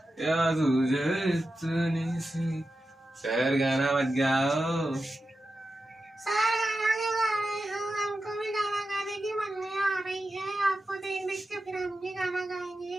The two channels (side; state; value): both; normal; correlation 0.91